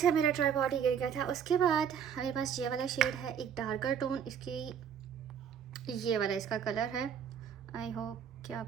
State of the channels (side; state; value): left; quieter; 8.0 dB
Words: मेरा ट्राइपॉड ही गिर गया था। उसके बाद मेरे पास ये वाला शेड है, एक डार्कर टोन इसकी, ये वाला इसका कलर है। आई होप कि